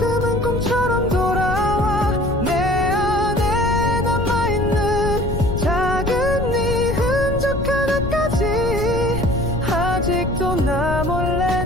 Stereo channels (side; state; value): left; noise; rumble, 5 dB below the sound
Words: 꿈처럼 돌아와. 내 안에 남아있는 작은 네 흔적 하나까지. 아직도 나 몰래